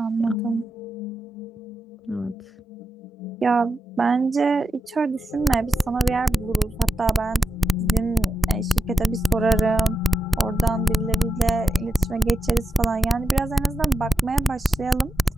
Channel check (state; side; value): normal; both; correlation 0.90